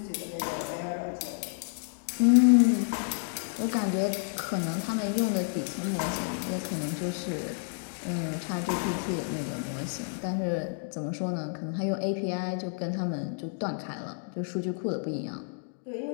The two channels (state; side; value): silent; right; digital silence